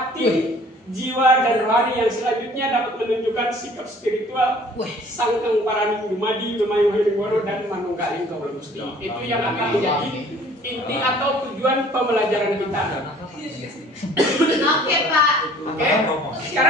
jiwa, dan rohani yang selanjutnya dapat menunjukkan sikap spiritual Sangkang Paraning Dumadi, Mamayu Haliling Bawono, dan Manunggaling Gawula Gusti. Itu yang akan menjadi inti atau tujuan pembelajaran kita. Oke, Pak. Oke,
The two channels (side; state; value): both; normal; correlation 0.53